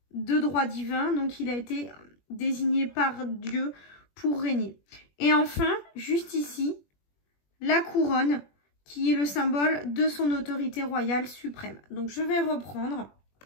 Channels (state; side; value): late; right; 21 ms